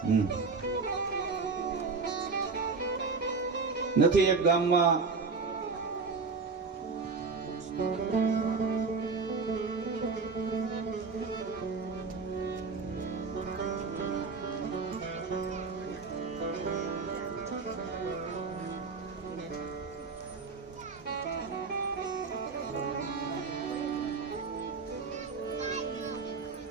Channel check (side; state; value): left; quieter; 4.5 dB